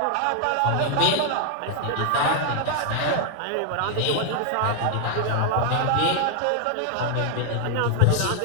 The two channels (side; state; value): both; different; correlation 0.00